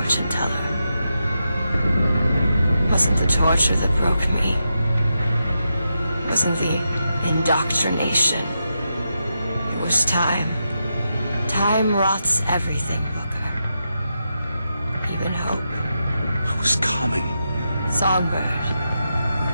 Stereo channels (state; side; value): inverted; both; correlation -0.86